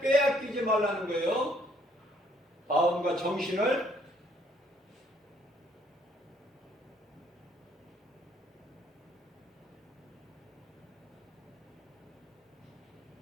빼앗기지 말라는 거예요. 마음과 정신을.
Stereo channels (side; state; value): both; normal; correlation 0.65